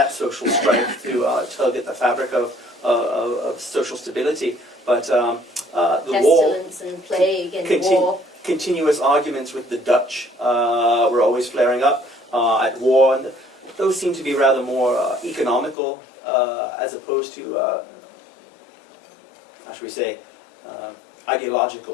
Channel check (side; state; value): right; drops out; at 15.8 s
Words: social strife to tug at the fabric of social stability. But the war, Pestilence and plague and war. continuous arguments with the Dutch were always flaring up at war, and those seem to be rather more economical as opposed to, how should we say,